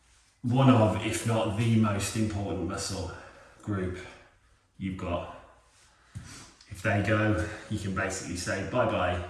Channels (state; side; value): identical; both; correlation 1.00